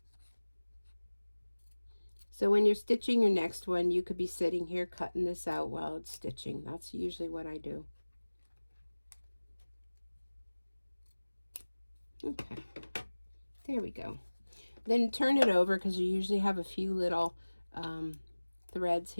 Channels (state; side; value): inverted; both; correlation -1.00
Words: So when you're stitching your next one, you could be sitting here cutting this out while it's stitching. That's usually what I do. Okay, there we go. Then turn it over, because you usually have a few little threads